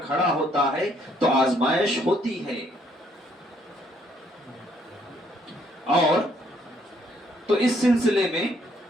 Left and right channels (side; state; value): both; normal; correlation 0.68